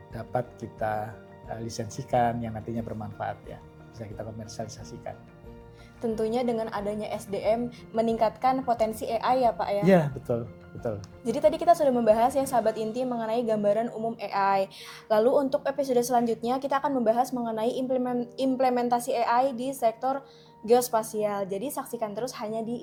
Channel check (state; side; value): identical; both; correlation 1.00